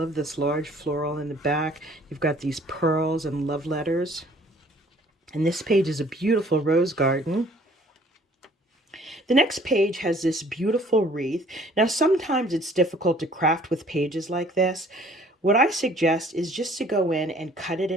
this large floral in the back. You've got these pearls and love letters. And this page is a beautiful rose garden. The next page has this beautiful wreath. Now sometimes it's difficult to craft with pages like this. What I suggest is just to go in and cut it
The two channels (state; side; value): normal; both; correlation 0.56